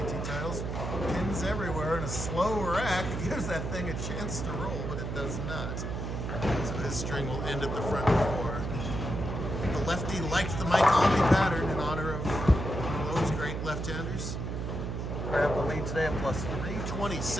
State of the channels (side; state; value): right; noise; hum, 4 dB below the sound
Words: titles. Pins everywhere, and a slow rack gives that thing a chance to roll, but it does not. So his string will end at the front four. The lefty liked the Mike Albee pattern in honor of one of those great left-handers. Grabbed the lead today at plus